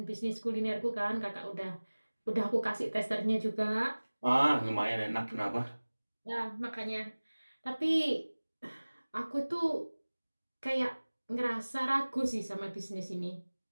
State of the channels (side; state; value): both; inverted; correlation -1.00